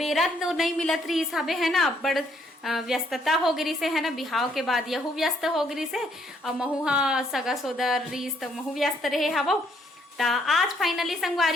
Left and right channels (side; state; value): both; normal; correlation 0.69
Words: बेरा तो नहीं मिलत रही हिसाबे है ना बड़ व्यस्तता हो गई से है ना बिहाव के बाद यहू व्यस्त हो गई से और महू हा सगा सोदर रीस तो महू व्यस्त रहे हवो ता आज फाइनली